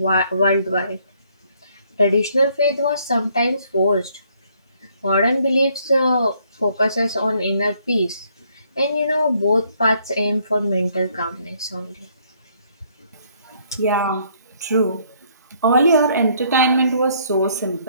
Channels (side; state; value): both; inverted; correlation -0.67